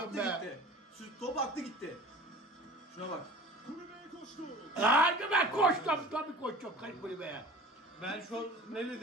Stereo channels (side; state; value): both; normal; correlation 0.41